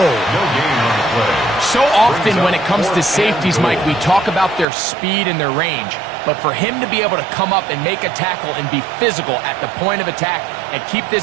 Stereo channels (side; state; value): left; drops out; at 4.7 s